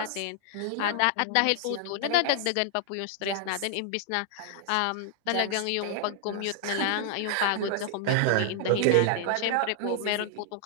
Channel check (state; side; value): different; both; correlation 0.00